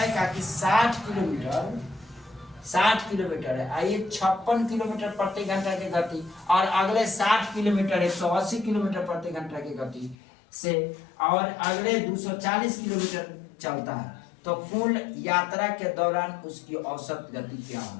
क्या कि 60 किलोमीटर है। आइए 56 किलोमीटर प्रति घंटा की गति और अगले 60 किलोमीटर 180 किलोमीटर प्रति घंटा की गति से और अगले 240 किलोमीटर चलता है, तो कुल यात्रा के दौरान उसकी औसत गति क्या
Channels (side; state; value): right; drops out; at 10.2 s